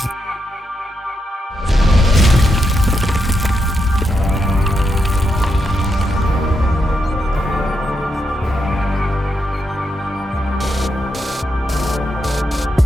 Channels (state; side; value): normal; both; correlation 0.83